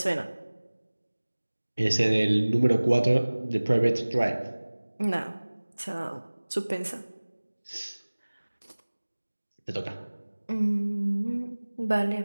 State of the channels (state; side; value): inverted; both; correlation -1.00